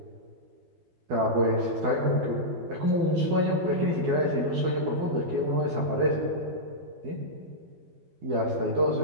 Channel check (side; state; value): left; late; 12 ms